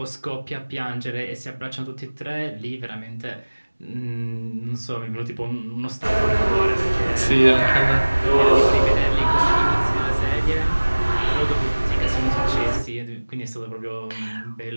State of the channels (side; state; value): both; inverted; correlation -1.00